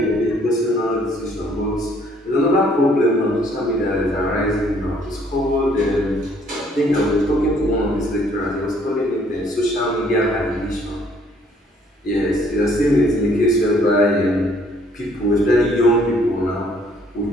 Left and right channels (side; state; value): both; normal; correlation 0.62